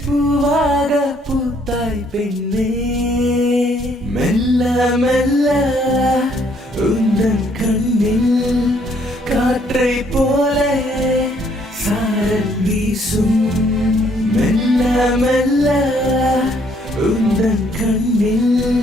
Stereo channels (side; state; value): both; normal; correlation 0.66